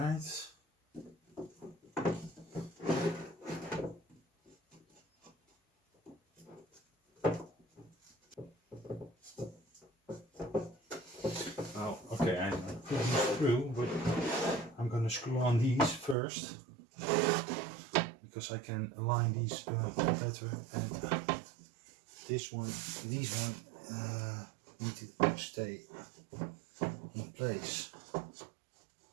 Oh, okay, I put these through, but I'm going to screw on these first because I can align these better. And these one need to stay in place.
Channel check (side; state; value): left; drops out; at 16.2 s